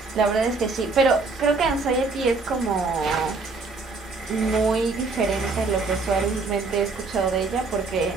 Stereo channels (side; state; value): left; quieter; 4.0 dB